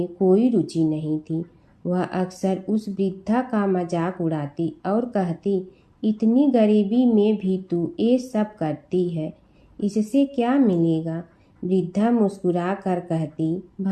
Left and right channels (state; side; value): identical; both; correlation 1.00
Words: कोई रुचि नहीं थी। वह अक्सर उस वृद्धा का मजाक उड़ाती और कहती, इतनी गरीबी में भी तू ये सब करती है, इससे क्या मिलेगा? वृद्धा मुस्कुरा कर कहती,